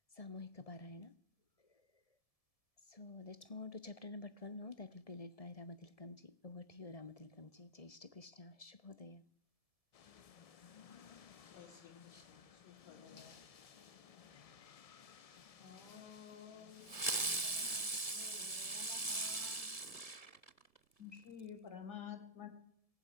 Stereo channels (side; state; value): right; late; 1.6 ms